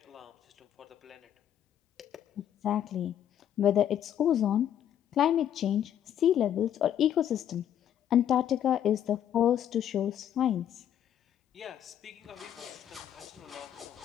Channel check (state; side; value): quieter; right; 10.2 dB